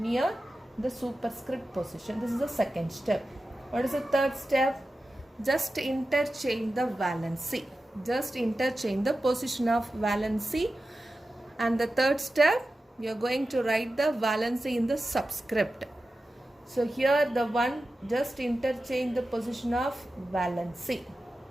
the superscript position. This is the second step. What is the third step? Just interchange the valency. Just interchange the position of valency. And the third step, you are going to write the valency in the subscript. So here the one, just interchange the position of valency.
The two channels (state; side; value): normal; both; correlation 0.93